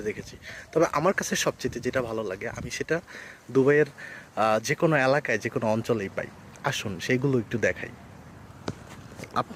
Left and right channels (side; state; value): both; identical; correlation 1.00